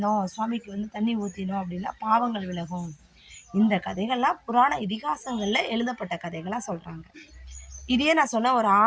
சுவாமிக்கு தண்ணி ஊற்றினோம் அப்படின்னா பாவங்கள் விலகும். இந்த கதைகள்லாம் புராண இதிகாசங்களில் எழுதப்பட்ட கதைகளாக சொல்கிறாங்க. இதையே நான் சொன்ன ஒரு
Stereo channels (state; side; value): identical; both; correlation 1.00